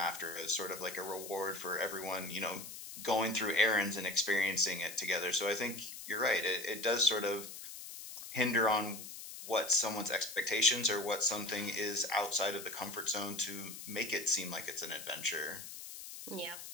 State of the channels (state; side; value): noise; left; hiss, 11 dB below the sound